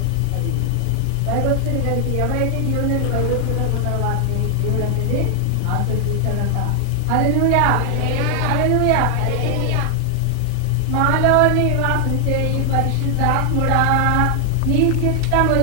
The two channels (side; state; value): both; different; correlation 0.00